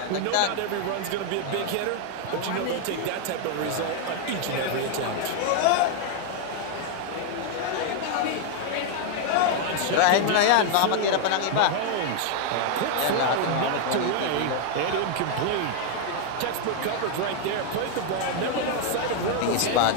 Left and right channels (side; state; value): both; different; correlation 0.00